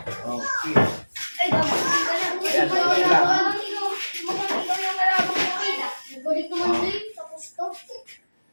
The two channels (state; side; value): inverted; both; correlation -1.00